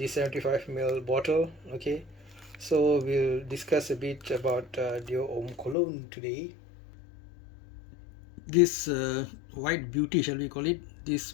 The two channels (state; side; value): drops out; right; at 5.8 s